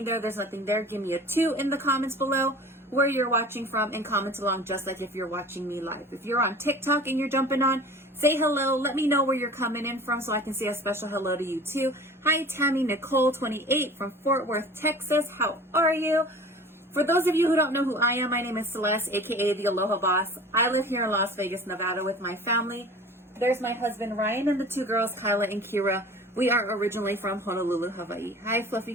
there's nothing there. Give me a 2 in the comments below where you're watching from and comment along just like if you're watching me live. If you're on TikTok and you're jumping on, say hello. Let me know where you're coming in from so I can say a special hello to you too. Hi, Tammy Nicole 28 from Fort Worth, Texas. How are you? For those of you who don't know who I am, my name is Celeste, aka the Aloha Boss. I live here in Las Vegas, Nevada with my family. There's my husband Ryan and the 2 girls, Kyla and Kira. We are originally from Honolulu, Hawaii. Hi, Fluffy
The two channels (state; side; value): normal; both; correlation 0.42